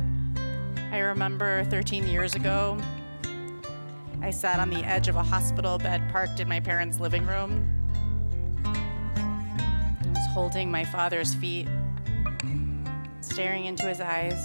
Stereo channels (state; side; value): inverted; both; correlation -1.00